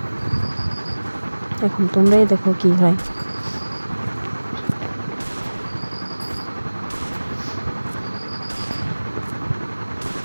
এখন তোমরাই দেখো কি হয়।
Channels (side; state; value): both; inverted; correlation -1.00